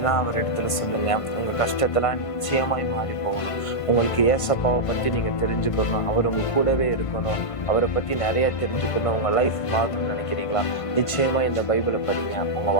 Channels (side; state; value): right; late; 1.5 ms